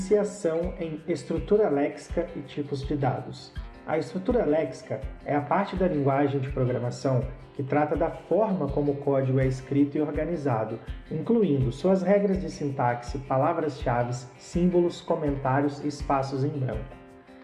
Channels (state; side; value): identical; both; correlation 1.00